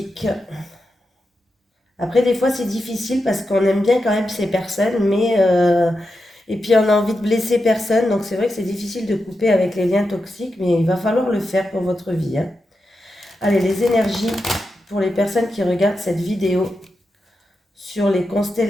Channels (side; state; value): both; normal; correlation 0.88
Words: Après, des fois, c'est difficile parce qu'on aime bien quand même ces personnes. Mais... et puis on a envie de blesser personne, donc c'est vrai que c'est difficile de couper avec les liens toxiques, mais il va falloir le faire pour votre vie. Hein. Allez, les énergies pour les personnes qui regardent cette vidéo sur les